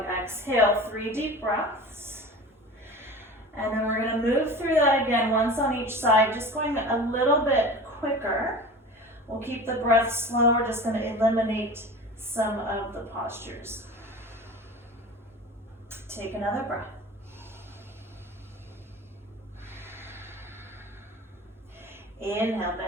exhale, 3 deep breaths. And then we're gonna move through that again, once on each side, just going a little bit quicker. We'll keep the breath slow, we're just gonna eliminate some of the postures. Take another breath. Inhale,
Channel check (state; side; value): normal; both; correlation 0.36